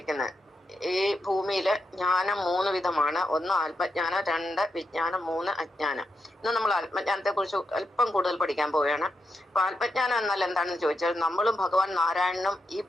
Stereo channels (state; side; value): normal; both; correlation 0.85